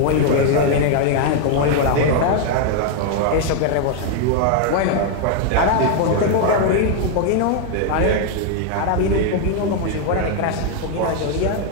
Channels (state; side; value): different; both; correlation 0.00